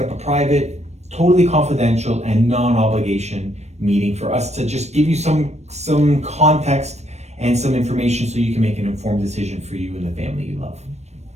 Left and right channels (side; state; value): left; late; 0.32 ms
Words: up a private, totally confidential and non-obligation meeting for us to just give you some context and some information so you can make an informed decision for you and the family you love.